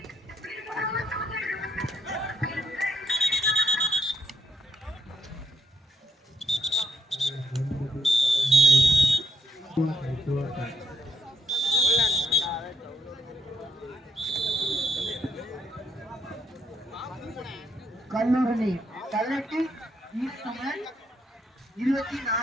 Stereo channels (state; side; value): normal; both; correlation 0.73